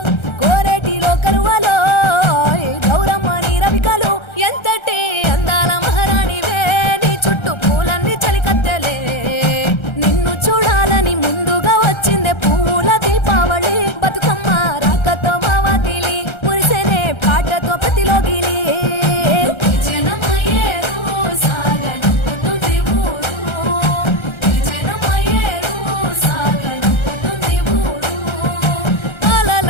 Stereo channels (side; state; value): right; late; 1.3 ms